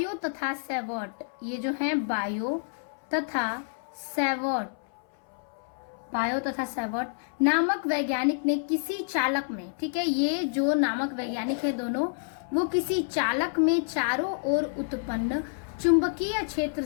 तथा सेवर्ट, ये जो है बायो तथा सेवर्ट नामक वैज्ञानिक ने किसी चालक में, ठीक है, ये जो नामक वैज्ञानिक है दोनों, वो किसी चालक में चारों ओर उत्पन्न चुंबकीय क्षेत्र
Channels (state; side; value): silent; right; 59 dB below the other